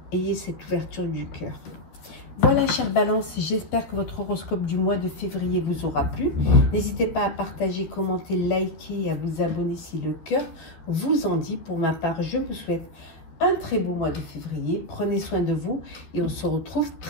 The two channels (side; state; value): right; late; 13 ms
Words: Ayez cette ouverture du cœur. Voilà, chère Balance, j'espère que votre horoscope du mois de février vous aura plu. N'hésitez pas à partager, commenter, liker et à vous abonner si le cœur vous en dit. Pour ma part, je vous souhaite un très beau mois de février. Prenez soin de vous et on se retrouve